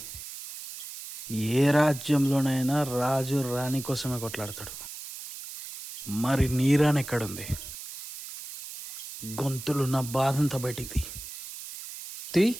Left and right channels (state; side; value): noise; right; hiss, 9 dB below the sound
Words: ఏ రాజ్యంలోనైనా రాజు రాణి కోసమే కొట్లాడతాడు. మరి నీ రాణి ఎక్కడుంది? గొంతులు నా బాధంతా బయటికి తీ.